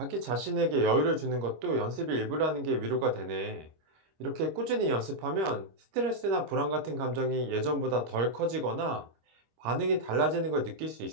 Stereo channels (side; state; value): left; late; 25 ms